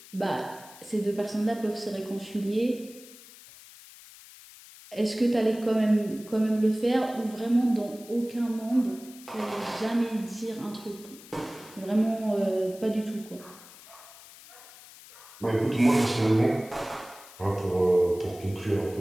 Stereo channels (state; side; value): noise; left; hiss, 20 dB below the sound